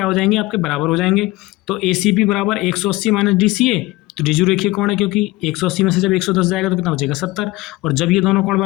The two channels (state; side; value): quieter; right; 19.8 dB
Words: हो जाएंगे आपके बराबर हो जाएंगे। तो ए सी पी बराबर 180 माइनस डी सी ए तो ऋजु रेखीय कोण है क्योंकि 180 में से जब 110 जाएगा तो कितना बचेगा 70 और जब ये दोनों कोण